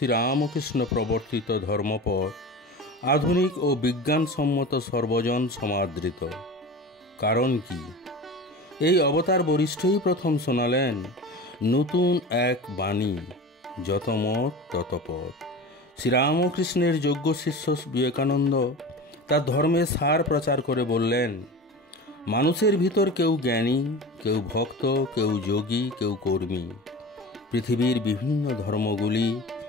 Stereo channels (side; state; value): both; normal; correlation 0.33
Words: প্রবর্তিত ধর্মপথ আধুনিক ও বিজ্ঞানসম্মত সর্বজন সমাদৃত। কারণ কি? এই অবতার বরিষ্ঠই প্রথম শোনালেন নতুন এক বাণী, যত মত তত পথ। শ্রীরামকৃষ্ণের যোগ্য শিষ্য বিবেকানন্দ তার ধর্মের সার প্রচার করে বললেন, মানুষের ভিতর কেউ জ্ঞানী, কেউ ভক্ত, কেউ যোগী, কেউ কর্মী। পৃথিবীর বিভিন্ন ধর্মগুলি